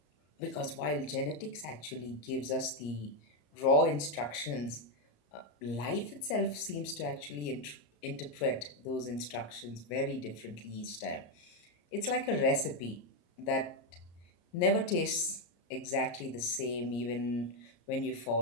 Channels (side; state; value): right; late; 34 ms